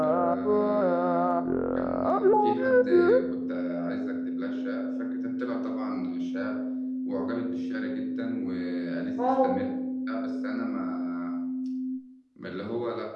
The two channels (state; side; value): identical; both; correlation 1.00